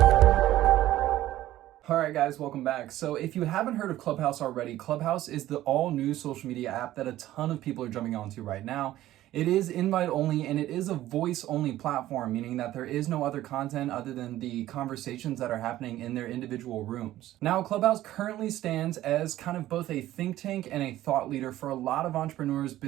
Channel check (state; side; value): quieter; left; 14.4 dB